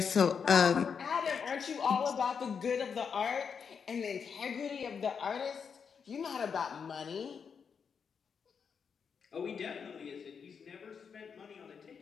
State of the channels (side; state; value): right; quieter; 6.4 dB